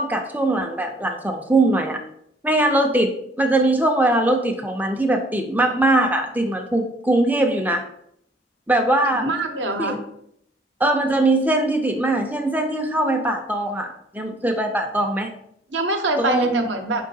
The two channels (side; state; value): both; normal; correlation 0.57